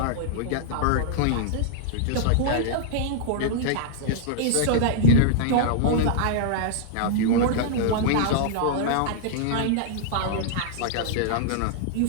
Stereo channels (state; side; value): different; both; correlation -0.01